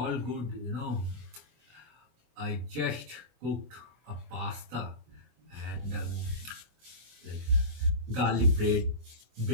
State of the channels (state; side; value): late; left; 24 ms